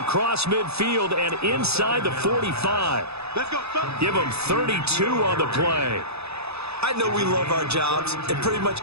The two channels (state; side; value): late; left; 0.79 ms